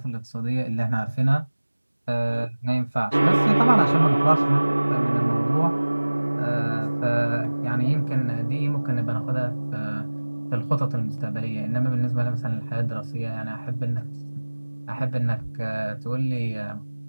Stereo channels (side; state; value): both; inverted; correlation -1.00